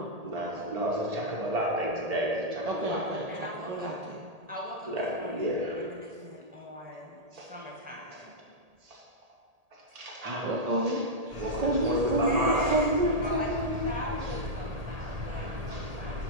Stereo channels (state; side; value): late; left; 1.8 ms